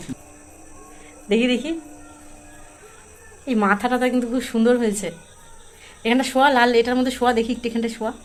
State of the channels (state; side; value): identical; both; correlation 1.00